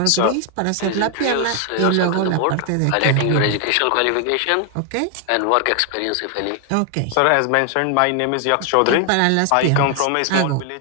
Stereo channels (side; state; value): both; different; correlation 0.00